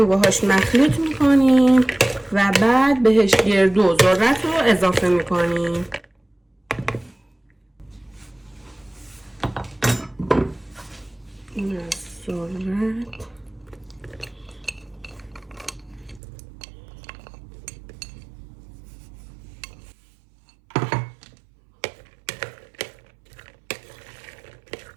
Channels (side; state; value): left; drops out; at 16.2 s